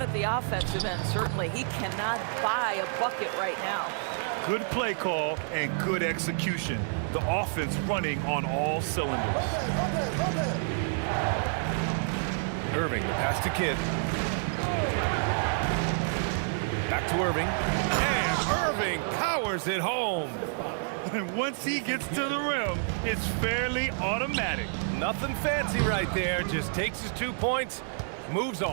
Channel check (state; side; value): silent; left; digital silence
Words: at the offensive end, certainly. He cannot buy a bucket right now. Good play call and good execution. The offense running on all cylinders. Irving, the pass to Kidd. Back to Irving. And Irving powers it home. And once he gets to the rim, it's fairly automatic. Nothing fancy right there. Just takes his 2 points, moves